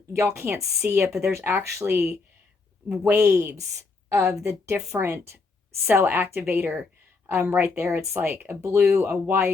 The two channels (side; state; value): right; quieter; 4.1 dB